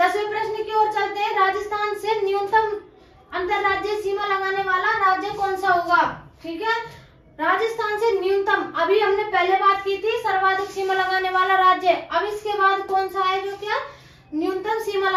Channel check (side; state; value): both; identical; correlation 1.00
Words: प्रश्न की ओर चलते हैं। राजस्थान से न्यूनतम अंतर्राज्यीय सीमा लगाने वाला राज्य कौन सा होगा, ठीक है। राजस्थान से न्यूनतम, अभी हमने पहले बात की थी सर्वाधिक सीमा लगाने वाला राज्य, अब इसके बाद कौन सा है जो क्या न्यूनतम सीमा